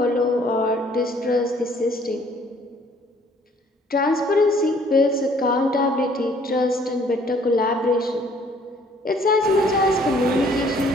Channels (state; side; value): normal; both; correlation 0.60